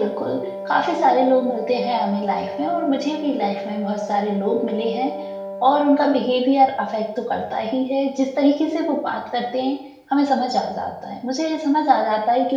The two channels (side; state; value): both; identical; correlation 1.00